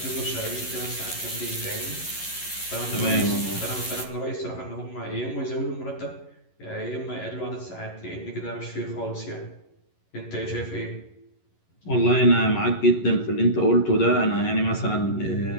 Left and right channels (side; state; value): right; late; 11 ms